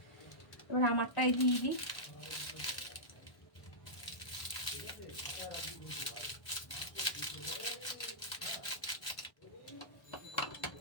এবার আমারটাই দিয়ে দিই।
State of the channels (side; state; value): right; late; 1.3 ms